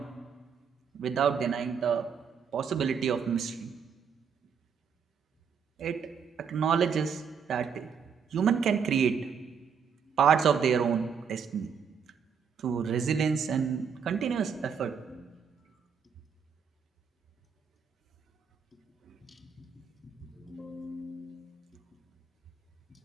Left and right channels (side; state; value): left; quieter; 6.7 dB